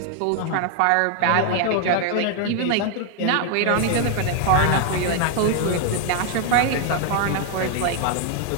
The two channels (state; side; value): different; both; correlation 0.00